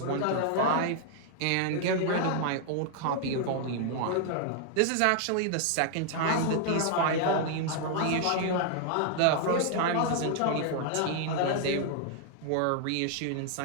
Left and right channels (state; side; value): different; both; correlation 0.00